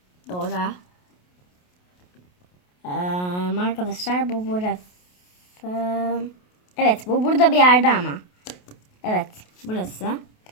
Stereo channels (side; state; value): right; late; 28 ms